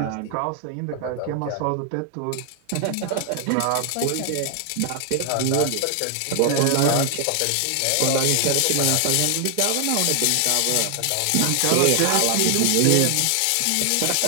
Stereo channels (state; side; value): different; both; correlation 0.00